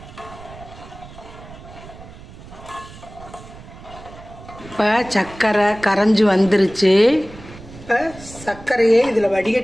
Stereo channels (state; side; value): noise; right; rumble, 17 dB below the sound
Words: இப்போ சர்க்கரை கரைஞ்சி வந்துருச்சு. இப்போ சர்க்கரையை இதில்